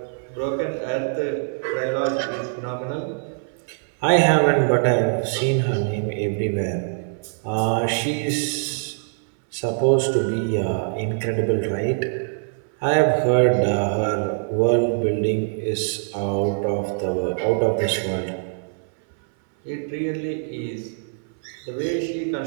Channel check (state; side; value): silent; left; 63 dB below the other